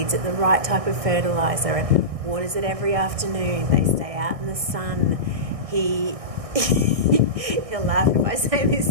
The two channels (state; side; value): late; left; 1.6 ms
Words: it the right type of fertiliser and waters it every afternoon. They stay out in the sun. He'll laugh if I say